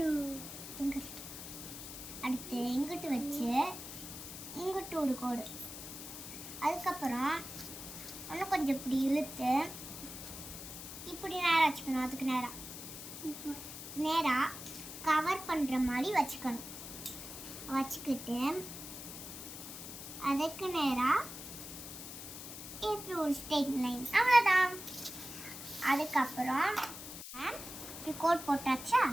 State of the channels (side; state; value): left; noise; hiss, 10 dB below the sound